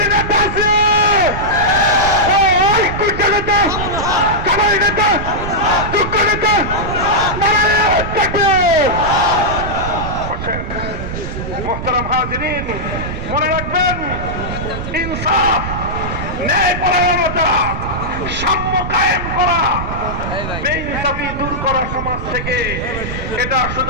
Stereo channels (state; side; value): noise; right; rumble, 6 dB below the sound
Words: মোহতারাম হাজিরিন, মনে রাখবেন ইনসাফ, ন্যায়পরায়ণতা, সাম্য কায়েম করা, বেইনসাফি দূর করা সমাজ থেকে, এটা